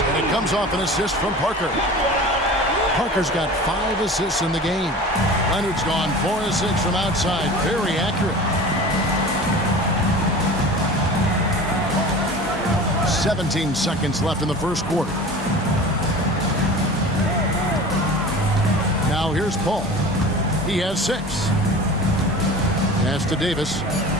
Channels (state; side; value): normal; both; correlation 0.37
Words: and it comes off an assist from Parker. Parker's got 5 assists in the game. Leonard's gone 4 of 6 from outside. Very accurate. 17 seconds left in the first quarter. Now here's Paul. He has 6. Pass to Davis.